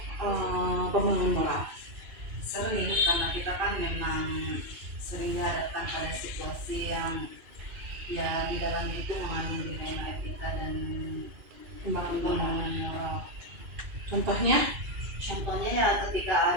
pembangun moral? Sering, karena kita kan memang sering dihadapkan pada situasi yang ya di dalamnya itu mengandung dilema etika dan pembangunan moral. Contohnya Ya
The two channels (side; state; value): left; late; 1.6 ms